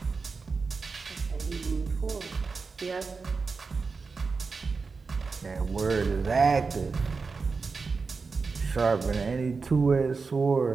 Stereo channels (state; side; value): quieter; left; 4.6 dB